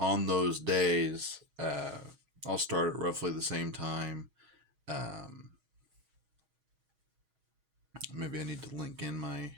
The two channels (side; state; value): left; late; 6.3 ms